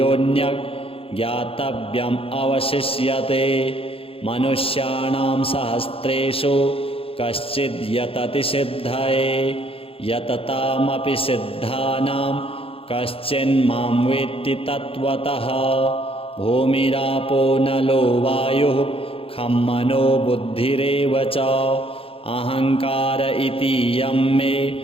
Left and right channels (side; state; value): right; late; 0.27 ms